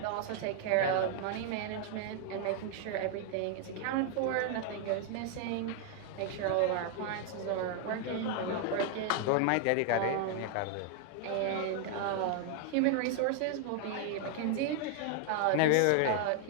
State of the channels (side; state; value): both; different; correlation 0.00